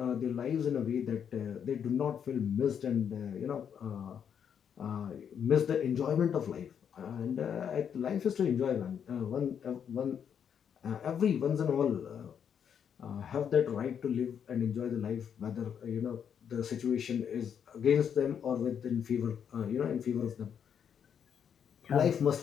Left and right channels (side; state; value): right; quieter; 8.0 dB